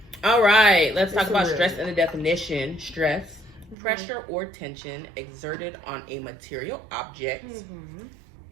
All right. Let's talk about stress and the definition. Stress, pressure or tension exerted on a material object.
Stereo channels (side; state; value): left; drops out; at 3.8 s